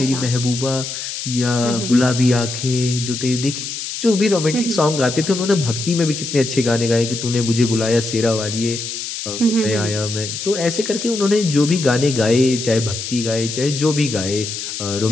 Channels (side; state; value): left; noise; hiss, 6 dB below the sound